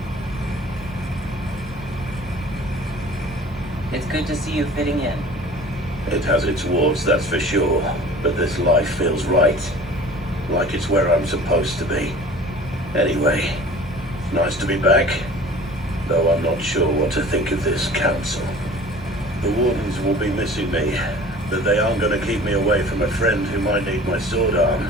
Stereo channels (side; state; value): both; normal; correlation 0.44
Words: It's good to see you fitting in. It has its warts, that's for sure. But this life feels right. Like it's where I'm supposed to be. Anyway, nice to be back. Though I'm not sure what to think of this council. The wardens will be missing me, but they aren't going to keep me away from a friend who might need my sword